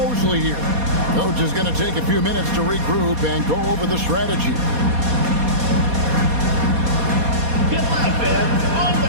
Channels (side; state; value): left; late; 4.2 ms